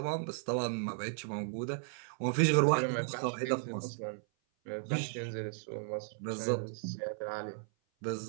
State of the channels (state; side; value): silent; left; 54 dB below the other